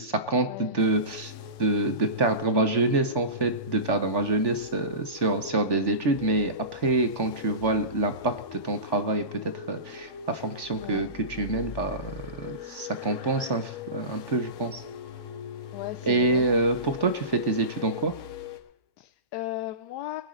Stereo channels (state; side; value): late; right; 1.1 ms